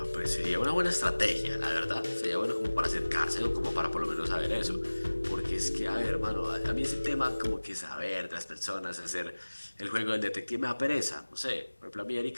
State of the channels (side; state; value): both; inverted; correlation -1.00